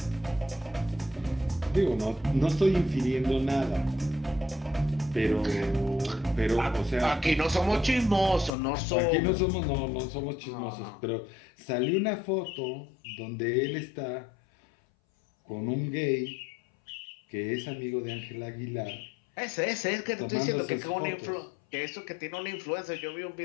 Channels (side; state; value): right; drops out; at 8.5 s